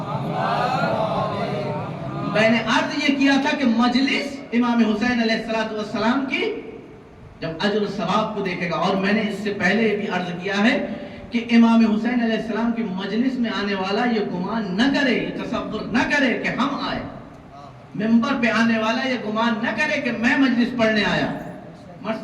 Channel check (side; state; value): both; identical; correlation 1.00